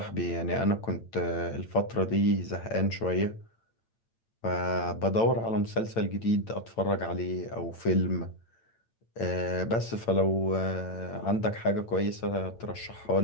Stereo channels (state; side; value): late; right; 8.9 ms